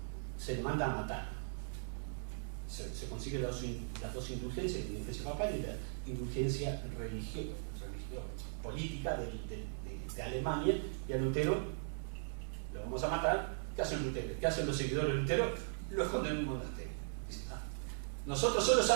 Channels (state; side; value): silent; left; 52 dB below the other